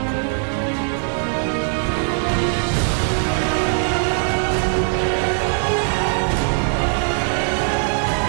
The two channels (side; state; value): left; silent; 59 dB below the other